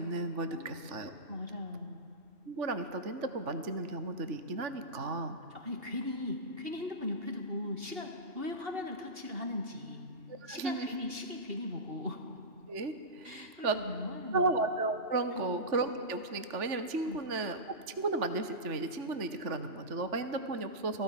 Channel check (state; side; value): late; left; 3.4 ms